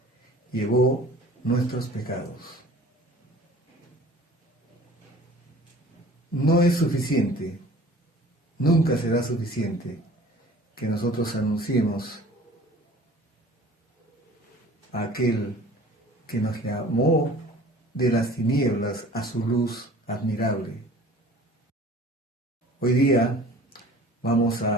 llevó nuestros pecados. No es suficiente, nunca será suficiente que nosotros anunciemos a aquel que nos llamó de las tinieblas a su luz admirable. Hoy día vamos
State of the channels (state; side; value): normal; both; correlation 0.47